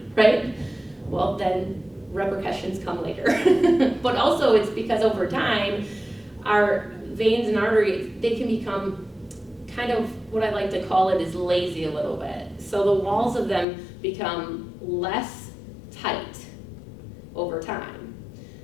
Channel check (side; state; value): right; drops out; at 13.7 s